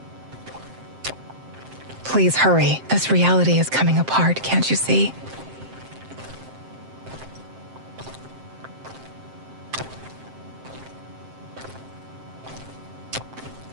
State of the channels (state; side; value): late; left; 7.6 ms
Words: Please hurry. This reality is coming apart, can't you see?